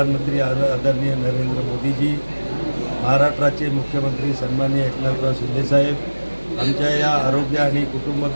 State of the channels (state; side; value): inverted; both; correlation -1.00